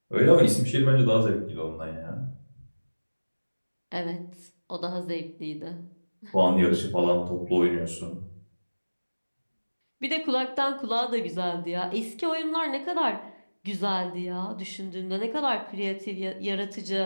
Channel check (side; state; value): both; inverted; correlation -1.00